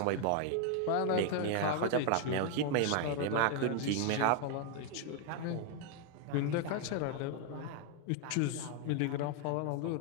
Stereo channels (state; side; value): different; both; correlation 0.00